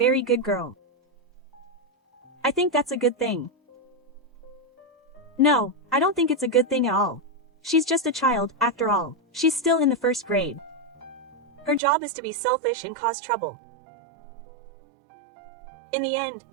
good girl. I think that's a good thing. No, I don't think it's a good thing at all. She's just a child, after all. She's still in the first grade. Her job is to be selfish and cause trouble. In the end,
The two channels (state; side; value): drops out; left; at 11.8 s